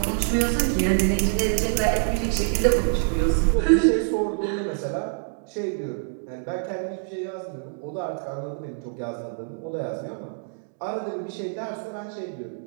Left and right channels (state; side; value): silent; left; digital silence